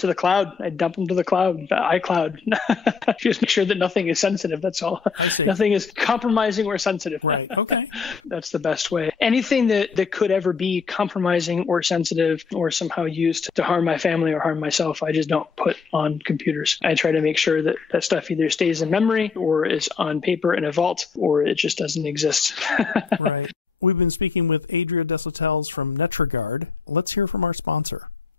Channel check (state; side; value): quieter; right; 5.4 dB